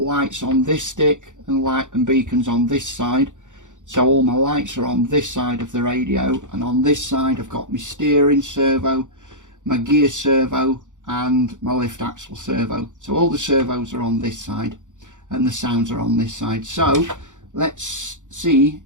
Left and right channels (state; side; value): late; left; 0.86 ms